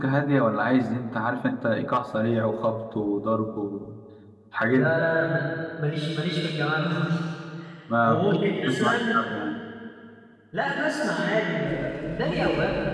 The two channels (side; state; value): both; identical; correlation 1.00